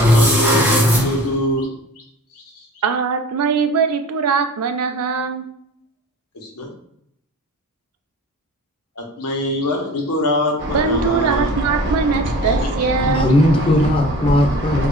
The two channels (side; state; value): both; normal; correlation 0.41